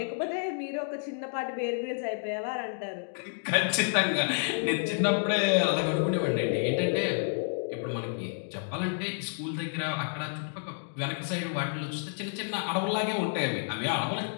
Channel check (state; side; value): silent; right; digital silence